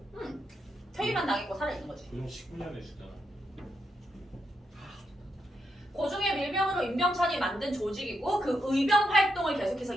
퇴위만 당했고 살아있는 거지. 요즘 19년에 주잖아. 고종의 밀명으로 임병찬이 만든 조직이고 그 의병 활동을 계속해서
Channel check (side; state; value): both; normal; correlation 0.82